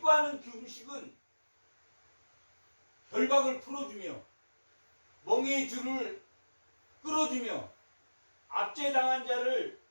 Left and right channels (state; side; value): inverted; both; correlation -1.00